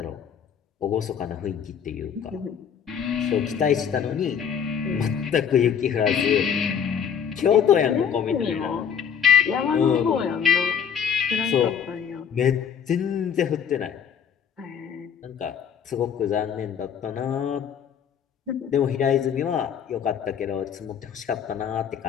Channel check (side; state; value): right; quieter; 7.8 dB